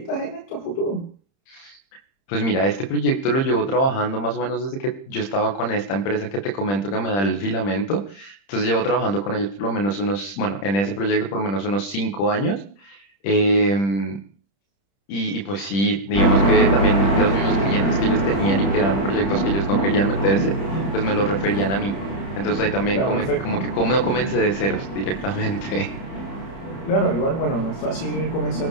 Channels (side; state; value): right; late; 30 ms